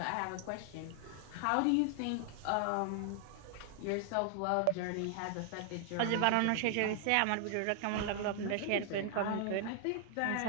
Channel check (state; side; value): different; both; correlation 0.00